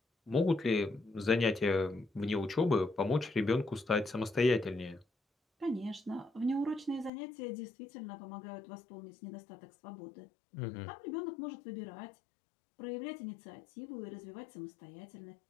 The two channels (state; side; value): drops out; right; at 7.1 s